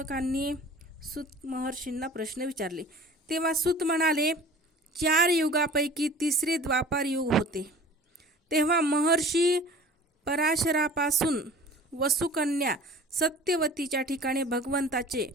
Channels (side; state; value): both; normal; correlation 0.44